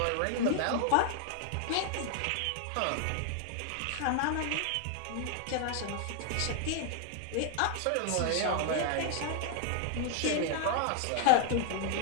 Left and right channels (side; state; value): both; different; correlation 0.00